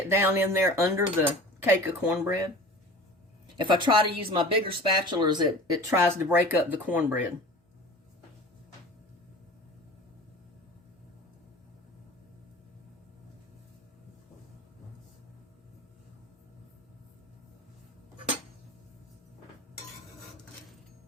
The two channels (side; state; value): both; normal; correlation 0.39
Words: down in there under the cake of cornbread. If I try to use my bigger spatulas, it tries to break up the cornbread.